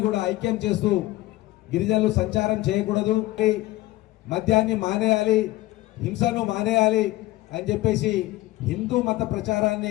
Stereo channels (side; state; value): right; quieter; 17.6 dB